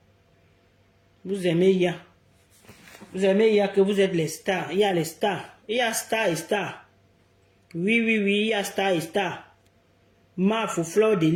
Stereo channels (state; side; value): identical; both; correlation 1.00